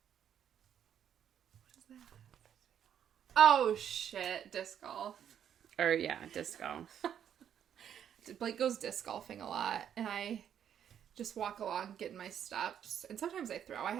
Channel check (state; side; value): quieter; left; 9.2 dB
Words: What is that? Oh, shit. Disc golf. Or, yeah, disc golf. Blake goes disc golfing a lot, and I just walk along getting my steps. And sometimes I throw. I